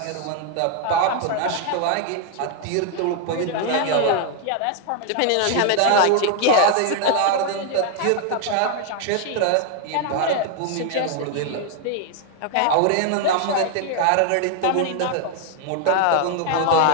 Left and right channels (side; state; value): both; different; correlation 0.00